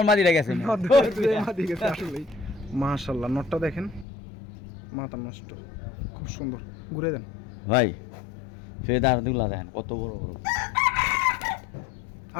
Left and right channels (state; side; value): drops out; right; at 4.0 s